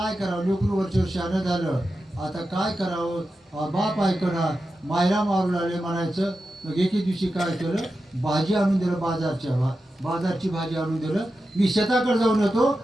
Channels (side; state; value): both; normal; correlation 0.91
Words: करावं, लेकरू वरच्या शहाणं झालं, आता काय करावं, बाप ऐकना, मायला मारू लागले म्हणायचं. मग एके दिवशी काय केलं, भाजी आणून दिलं, बाजारची भाजी आणून दिलं. मी शेताकडे जाऊन येतो